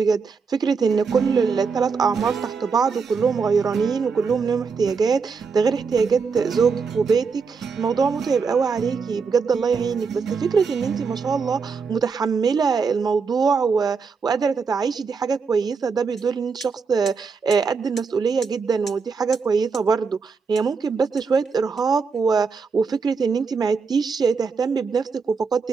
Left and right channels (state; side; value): quieter; left; 5.2 dB